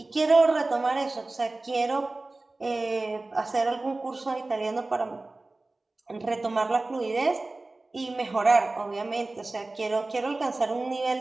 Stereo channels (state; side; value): quieter; left; 3.1 dB